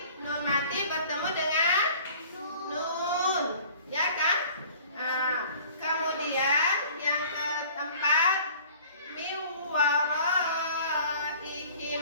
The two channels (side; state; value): both; inverted; correlation -0.49